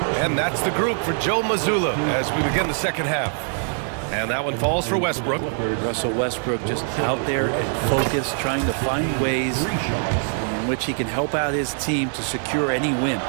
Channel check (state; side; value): silent; left; 63 dB below the other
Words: And that's the group for Joe Mazzulla as we begin the second half. And that one falls for Westbrook. Russell Westbrook just out there and focused, trying to find ways in which he can help out his team to secure any win.